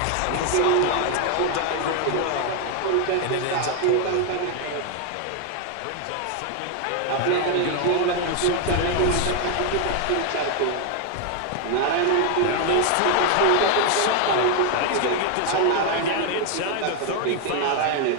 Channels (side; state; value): both; different; correlation 0.00